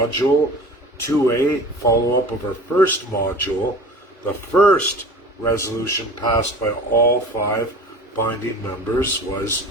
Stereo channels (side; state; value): both; normal; correlation 0.39